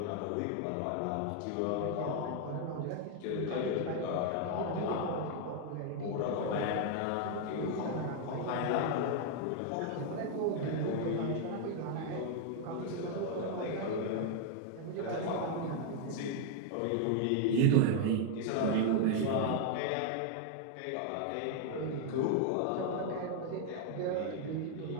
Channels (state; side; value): different; both; correlation 0.00